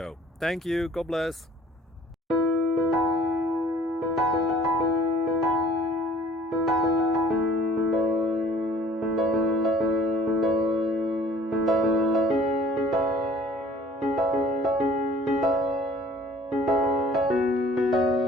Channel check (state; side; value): normal; both; correlation 0.52